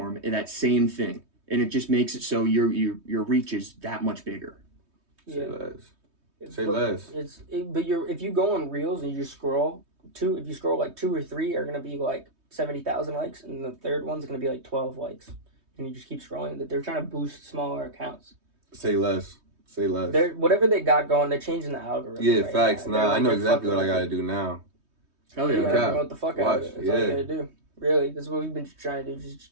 that same thing. And it just makes it so your reach is that much bigger. Say Yeah. less. Say less. But if you go on Reels and you scroll, if you scroll like 2 or 3 are gonna be like 70,000 likes, and the third one's gonna be like 12 likes, and you just keep scrolling. That they're trying to boost smaller accounts. Say less. Say less. They're whatever they got going, they're changing the algorithm. Yeah, right facts. now. They're Nah, I know they're exactly what I fucking gotta with do now. Hell it. You yeah. gotta Cap. promote the fuck out of Watch, it. That's all you yeah. gotta do. Really, that's what we've been trying to do. Just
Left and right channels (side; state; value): left; late; 3.2 ms